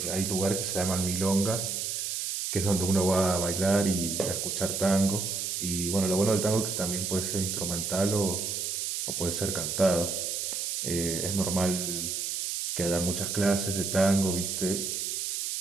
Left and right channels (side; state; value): right; noise; hiss, 2 dB below the sound